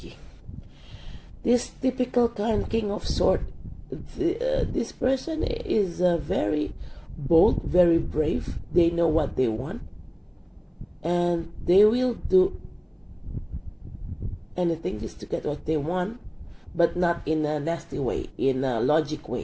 This typical kind King of Swords, this person is very bold, very brave. They know what they want, and they will do anything just to get what they want, but not in a nasty way, in a logic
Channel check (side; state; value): both; identical; correlation 1.00